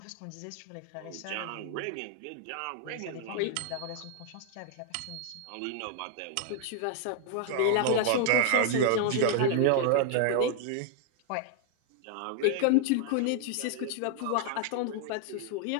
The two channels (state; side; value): different; both; correlation 0.00